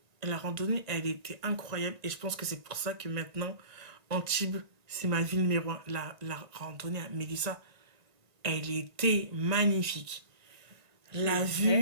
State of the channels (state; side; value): late; left; 1.9 ms